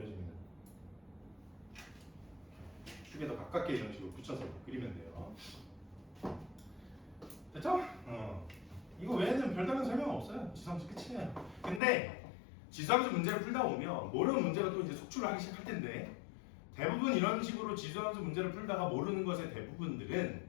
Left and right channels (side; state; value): right; drops out; at 11.8 s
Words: 축에 더 가깝게 이런 식으로 붙여서 그리면 돼요. 됐죠? 이거 외에는 별다른 설명 없어요. 지수함수 끝이에요. 근데 지수함수 문제를 풀다 보면 모르는 문제가 또 이제 속출을 하기 시작할 텐데 대부분 이런 식으로 지수함수 문제를 풀다가 모르는 것의 대부분들은